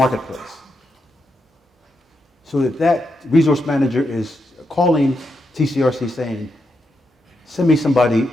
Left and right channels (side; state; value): both; normal; correlation 0.84